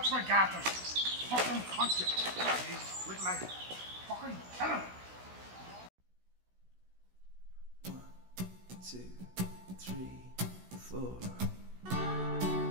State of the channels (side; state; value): left; late; 16 ms